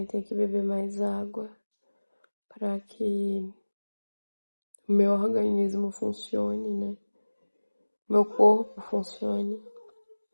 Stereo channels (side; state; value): both; inverted; correlation -1.00